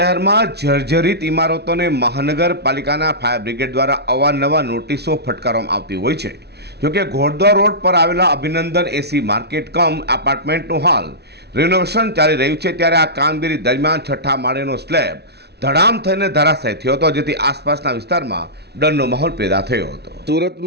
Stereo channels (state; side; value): late; left; 0.49 ms